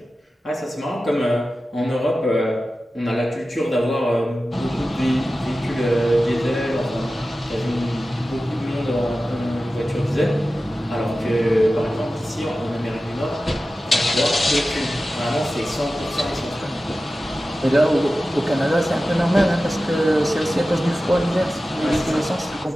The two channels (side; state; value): both; normal; correlation 0.94